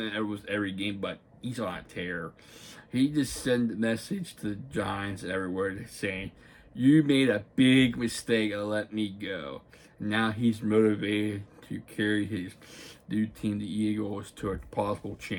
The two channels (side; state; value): both; identical; correlation 1.00